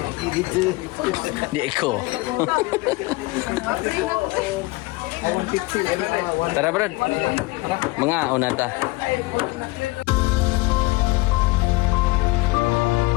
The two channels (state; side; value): quieter; right; 22.5 dB